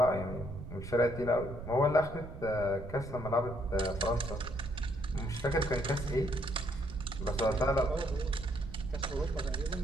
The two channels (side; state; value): right; noise; rumble, 10 dB below the sound